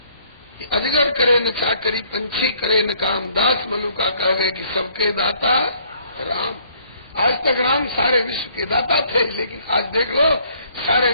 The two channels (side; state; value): both; inverted; correlation -0.63